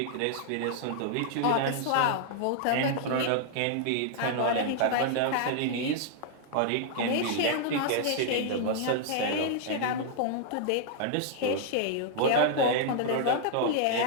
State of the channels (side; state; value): both; different; correlation -0.01